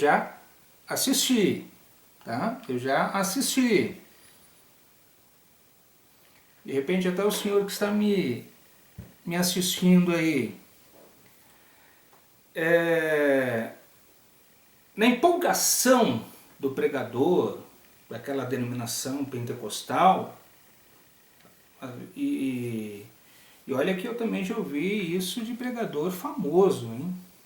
assisti, tá? De repente até o senhor que está me assistindo aí, na empolgação do pregador, daquela denominação pentecostal, e olha que eu também já ouvi isso de pregador famoso, hein?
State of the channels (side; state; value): both; identical; correlation 1.00